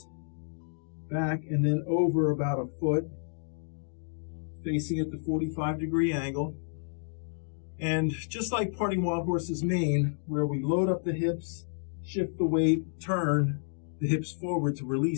back, and then over about a foot, facing at the 45-degree angle. And just like parting wild horse's mane, where we load up the hips, shift the weight, turn the hips forward to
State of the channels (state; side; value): silent; right; digital silence